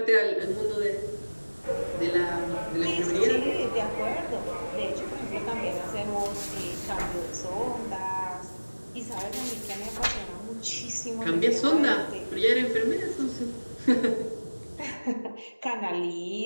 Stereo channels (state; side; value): inverted; both; correlation -1.00